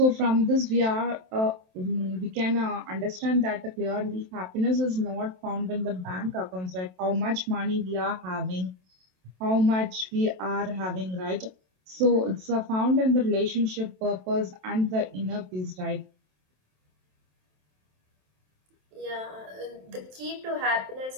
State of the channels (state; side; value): late; left; 27 ms